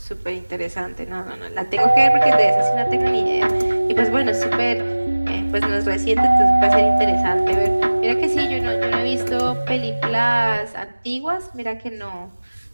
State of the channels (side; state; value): both; inverted; correlation -1.00